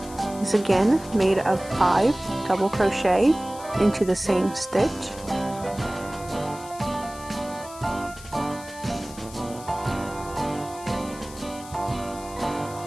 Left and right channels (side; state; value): left; noise; hiss, 17 dB below the sound